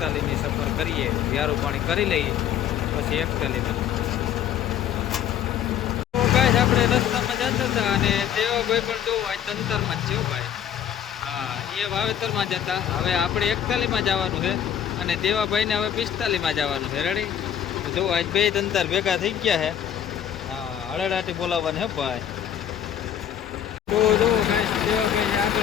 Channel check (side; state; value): right; quieter; 9.7 dB